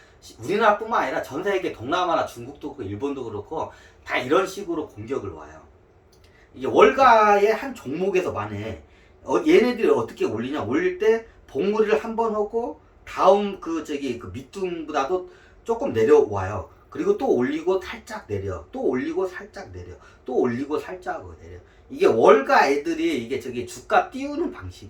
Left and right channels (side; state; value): both; identical; correlation 1.00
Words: 우리나라뿐만 아니라 전 세계 동남아나 중국도 그렇고 일본도 그렇고 다 이런 식으로 공격을 와요. 이게 월가의 한 종목에서만 해. 얘네들이 어떻게 올리냐? 올릴 때 봉우리를 한 번 하고 다음 그 밑둥보다도 조금 내려와요. 그리고 또 올리고 살짝 내려. 또 올리고 살짝 내려. 또 올리고 살짝 내려. 이게 월가 애들이 이게 주가 띄우는